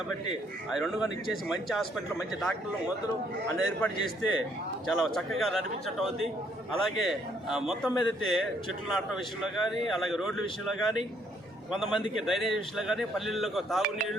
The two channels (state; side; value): normal; both; correlation 0.68